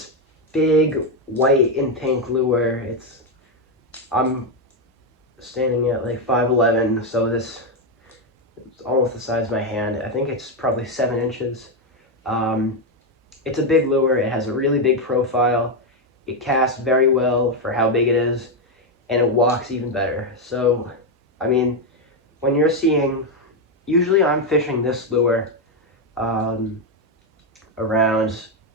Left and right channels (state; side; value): normal; both; correlation 0.05